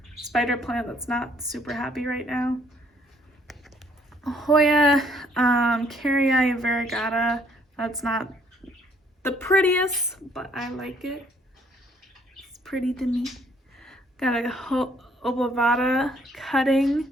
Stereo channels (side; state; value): both; normal; correlation 0.64